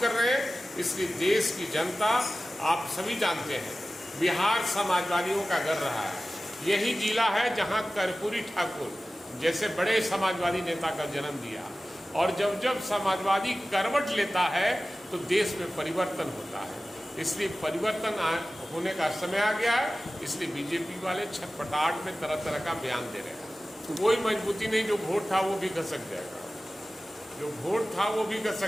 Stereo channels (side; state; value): both; normal; correlation 0.96